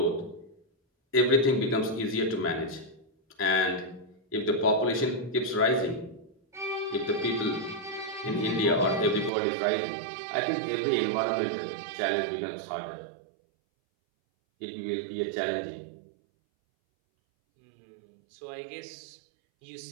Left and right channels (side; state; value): left; drops out; at 9.3 s